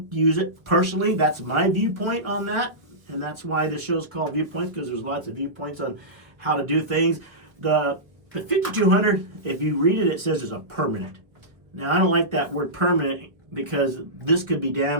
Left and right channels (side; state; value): left; late; 1.1 ms